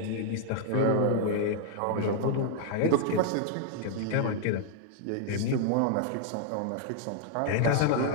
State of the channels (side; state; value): both; different; correlation -0.01